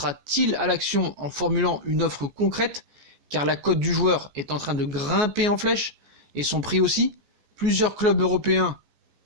à l'action en formulant une offre concrète, car la cote du joueur est en train de grimper en flèche, et son prix aussi. Plusieurs clubs européens,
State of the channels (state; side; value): late; left; 14 ms